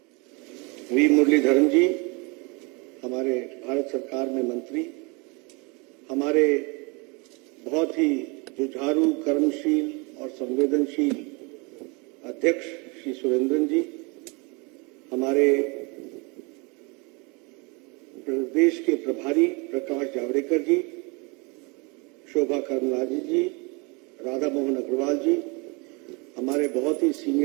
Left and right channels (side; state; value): left; quieter; 29.8 dB